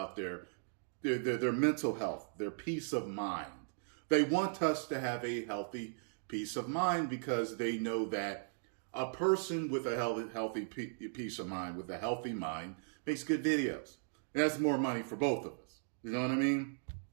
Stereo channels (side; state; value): left; silent; digital silence